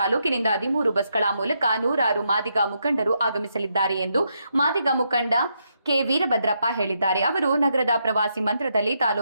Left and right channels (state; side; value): inverted; both; correlation -0.80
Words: 13 ಬಸ್ಗಳ ಮೂಲಕ ನೂರಾರು ಮಾದಿಗ ಮುಖಂಡರು ಆಗಮಿಸಲಿದ್ದಾರೆ ಎಂದು ಮಾದಿಗ ಮುಖಂಡ ಕೆ ವೀರಭದ್ರಪ್ಪ ಹೇಳಿದ್ದಾರೆ. ಅವರು ನಗರದ ಪ್ರವಾಸಿ ಮಂದಿರದಲ್ಲಿ